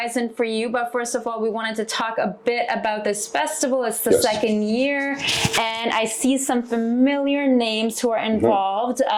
for you, but first of all, we wanted to talk a bit about this festival. It's the second year, and I see some familiar names who are involved,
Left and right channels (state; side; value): identical; both; correlation 1.00